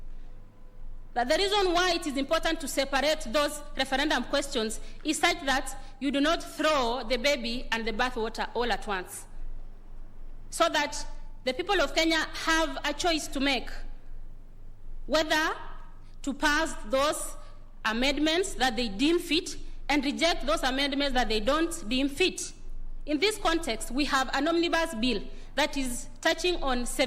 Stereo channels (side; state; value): both; identical; correlation 1.00